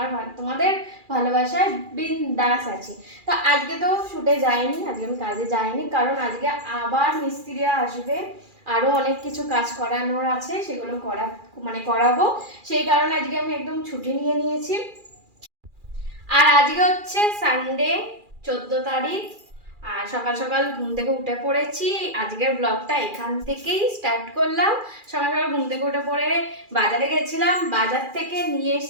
ভালোবাসায় বিন্দাস আছি। তো আজকে তো শুটে যাইনি, আজকে আমি কাজে যাইনি, কারণ আজকে আবার মিস্ত্রিরা আসবে, আরও অনেক কিছু কাজ করানোর আছে, সেগুলো করাবো। সেই কারণে আজকে আমি একদম ছুটি নিয়ে নিয়েছি। আর আজকে হচ্ছে সানডে, 14 তারিখ। আর সকাল সকাল ঘুম থেকে উঠে পড়েছি। আজকের ব্লগটা এখান থেকেই স্টার্ট করলাম। সকাল সকাল ঘুম থেকে উঠে পড়ে বাজারে গেছিলাম, বাজার থেকে নিয়ে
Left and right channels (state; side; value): late; left; 2.4 ms